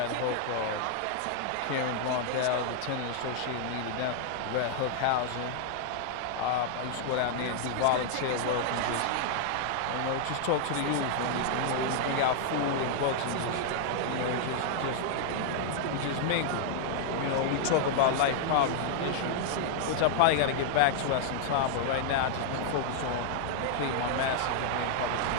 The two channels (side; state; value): both; different; correlation -0.01